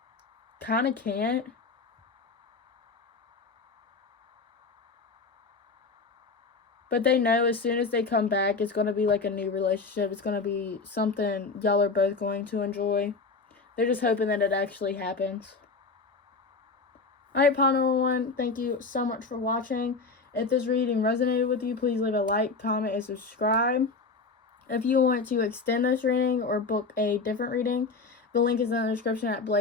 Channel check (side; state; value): right; quieter; 4.2 dB